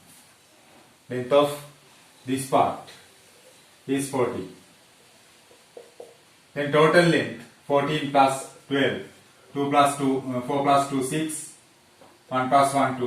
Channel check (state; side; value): identical; both; correlation 1.00